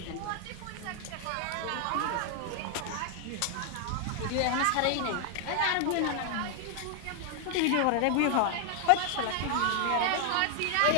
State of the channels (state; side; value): different; both; correlation 0.00